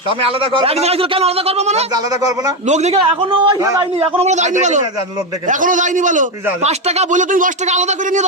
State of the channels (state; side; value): normal; both; correlation 0.09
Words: আমি আলাদা করব এক জায়গায় ছিল, কেন আলাদা করবো মানে? আলাদা করব না। লোক দেখে এখনো যায়নি, এখনো বলে যায়নি বলো, লোক দেখে এখনো যায়নি বলো। 5 টাকা বলে তুমি 10 টাকা আলাদা করে নিয়ে